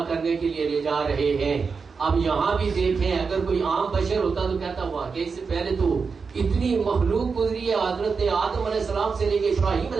کرنے کے لیے لے جا رہے ہیں. اب یہاں بھی دیکھیں، اگر کوئی عام بشر ہوتا تو کہتا واقعی سے پہلے تو اتنی مخلوق گزری ہے، حضرت آدم علیہ السلام سے لے کے ابراہیم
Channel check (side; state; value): left; quieter; 5.2 dB